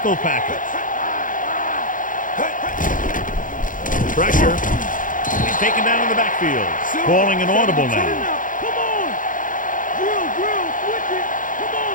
package. Pressure. He's taken down in the backfield. Calling an audible now. Come on. Drill, switch it. Come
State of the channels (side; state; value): right; late; 0.39 ms